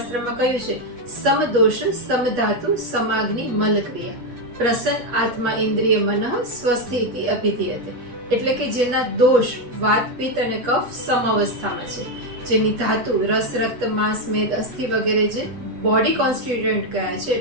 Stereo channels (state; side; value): late; left; 8.3 ms